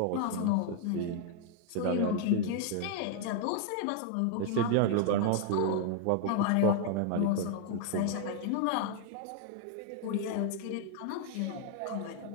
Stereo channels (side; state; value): both; different; correlation 0.00